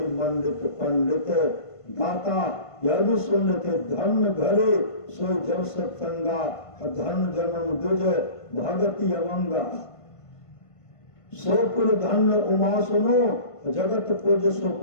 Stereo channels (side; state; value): right; late; 1.5 ms